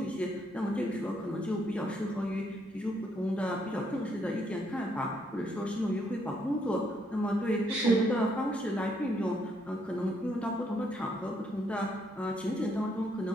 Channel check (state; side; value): normal; both; correlation 0.73